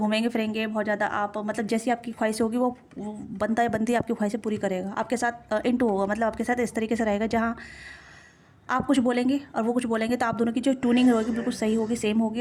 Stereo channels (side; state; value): both; identical; correlation 1.00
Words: फिरेंगे, बहुत ज़्यादा आप मतलब जैसी आपकी ख्वाहिश होगी वो बनता है बनती आपकी ख्वाहिशें पूरी करेगा, आपके साथ इंटू होगा, मतलब आपके साथ इस तरीके से रहेगा जहाँ आप कुछ बोलेंगे और वो कुछ बोलेंगे, तो आप दोनों की जो ट्यूनिंग होगी बिल्कुल सही होगी, सेम